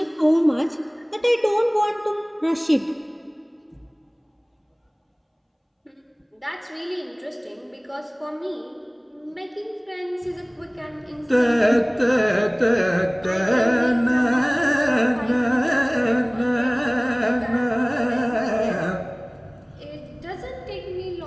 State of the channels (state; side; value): identical; both; correlation 1.00